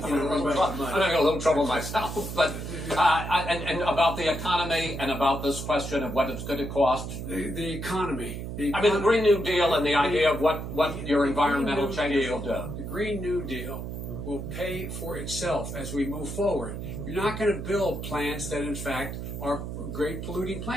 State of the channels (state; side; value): noise; right; hum, 6 dB below the sound